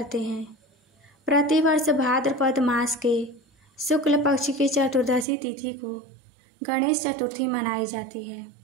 हैं। प्रतिवर्ष भाद्रपद मास के शुक्ल पक्ष की चतुर्दशी तिथि को गणेश चतुर्थी मनाई जाती है।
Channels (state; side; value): drops out; left; at 5.2 s